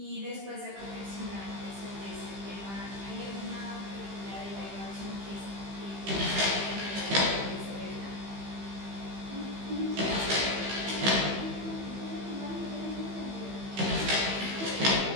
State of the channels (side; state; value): left; late; 15 ms